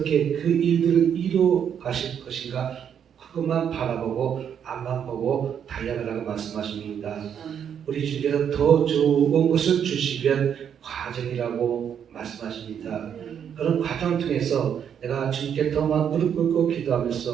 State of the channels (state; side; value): quieter; left; 8.4 dB